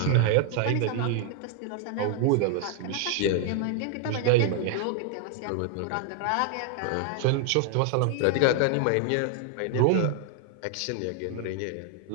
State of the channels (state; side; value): different; both; correlation 0.00